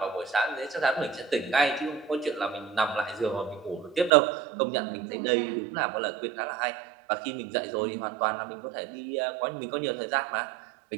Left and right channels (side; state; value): left; drops out; at 4.1 s